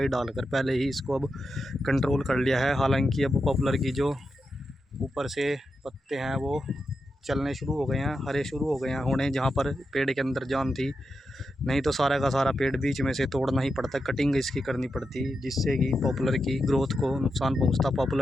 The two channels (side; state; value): both; normal; correlation 0.88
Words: डालकर पहले ही इसको अब कंट्रोल कर लिया है। हालांकि अब पॉपुलर की जो ऊपर से पत्ते हैं वो चलने शुरू हो गए हैं, हरे शुरू हो गए हैं होने, जहाँ पर पेड़ के अंदर जान थी। नहीं तो सारा का सारा पेड़ बीच में से तोड़ना ही पड़ता, कटिंग इसकी करनी पड़ती, जिससे कि पॉपुलर की ग्रोथ को नुकसान पहुंचता,